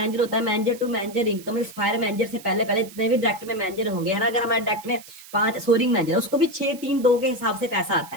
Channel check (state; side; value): noise; right; hiss, 19 dB below the sound